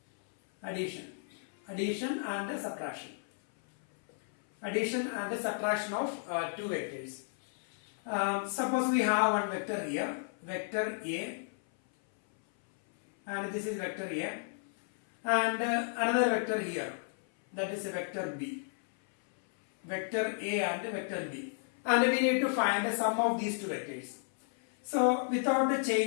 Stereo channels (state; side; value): silent; right; 56 dB below the other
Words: Addition and subtraction. Addition and subtraction of two vectors. Suppose we have one vector here, vector A, and this is vector A, and another vector here, that is a vector B. Vector A and vector B, and we need to find the sum of these two vectors. So without